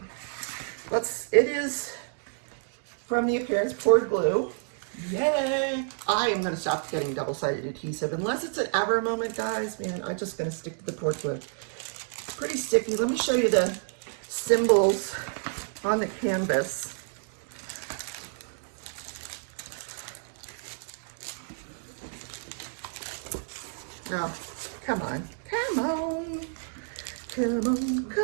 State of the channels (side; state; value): left; silent; digital silence